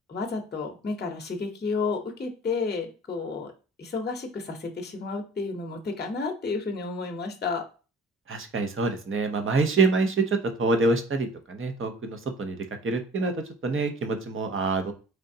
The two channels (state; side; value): normal; both; correlation 0.47